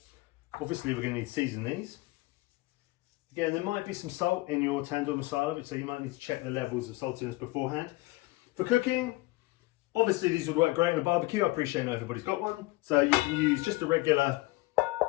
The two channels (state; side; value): quieter; right; 20.9 dB